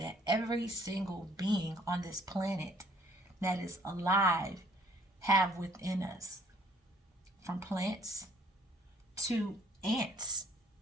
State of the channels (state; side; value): normal; both; correlation 0.61